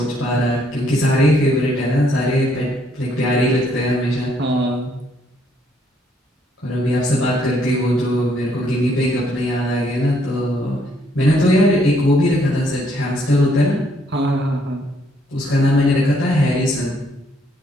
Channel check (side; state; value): both; normal; correlation 0.69